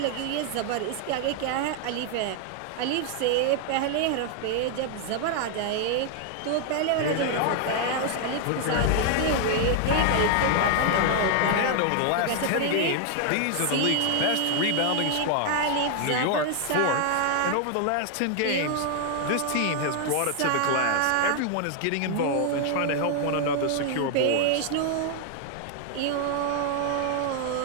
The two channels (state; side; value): different; both; correlation 0.00